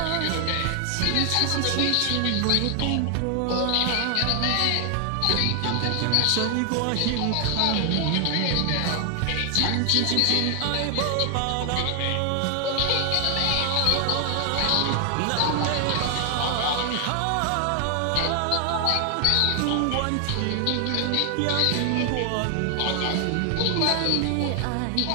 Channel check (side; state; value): both; different; correlation 0.00